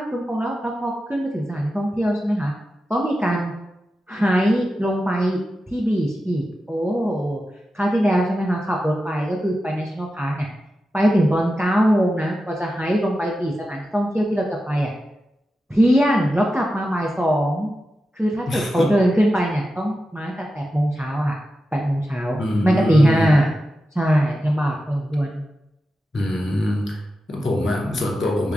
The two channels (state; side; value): normal; both; correlation 0.91